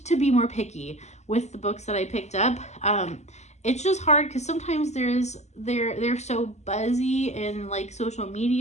to be more picky with the books that I picked up. It's just hard because sometimes they're so buzzy in social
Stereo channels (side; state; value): right; late; 0.33 ms